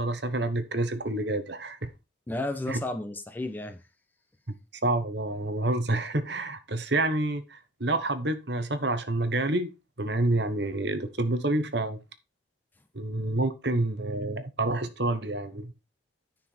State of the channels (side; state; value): both; normal; correlation 0.45